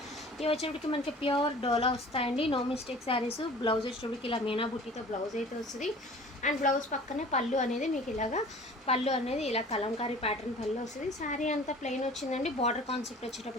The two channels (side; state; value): both; normal; correlation 0.46